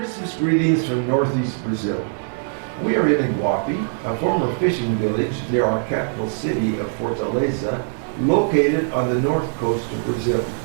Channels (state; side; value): silent; left; digital silence